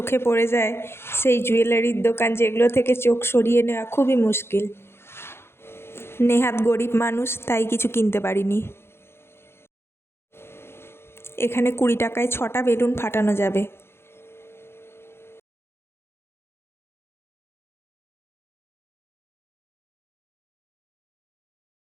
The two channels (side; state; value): right; late; 0.12 ms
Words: পড়ে যায় সেই জুয়েলারির দোকান, যেগুলো থেকে চোখ সরিয়ে নেওয়া খুবই মুশকিল। নেহাত গরিব মানুষ, তাই কিছু কিনতে পারিনি। এখানে 20 টাকায় 6টা বেলুন ফাটানো যাবে।